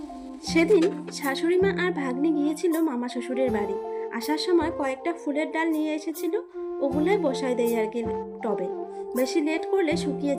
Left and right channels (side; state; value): both; identical; correlation 1.00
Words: সেদিন শাশুড়ি মা আর ভাগ্নি গিয়েছিল মামা শ্বশুরের বাড়ি। আসার সময় কয়েকটা ফুলের ডাল নিয়ে এসেছিল, ওগুলোই বসাই দেয় আর কি টবে। বেশি লেট করলে শুকিয়ে